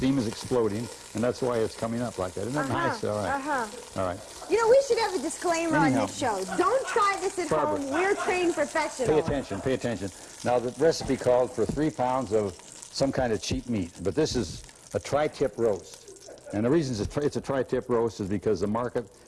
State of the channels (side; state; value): both; identical; correlation 1.00